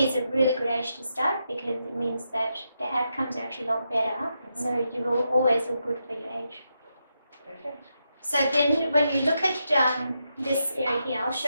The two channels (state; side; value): inverted; both; correlation -0.84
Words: a really good age to start because it means that the outcomes are actually a lot better. So you will always look good for your age. Perfect. So then when you look at this area here, I'll